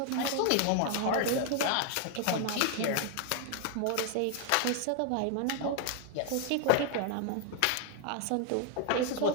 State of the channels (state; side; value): different; both; correlation 0.00